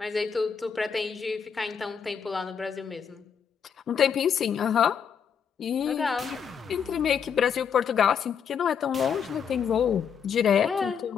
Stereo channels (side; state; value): right; quieter; 7.2 dB